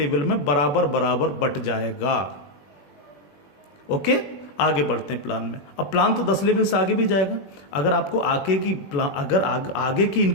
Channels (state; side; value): late; right; 21 ms